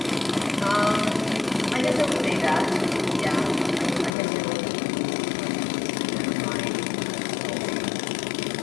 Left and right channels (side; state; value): right; drops out; at 4.2 s